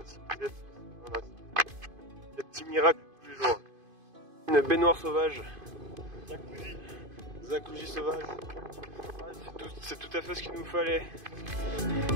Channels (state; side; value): late; left; 2.5 ms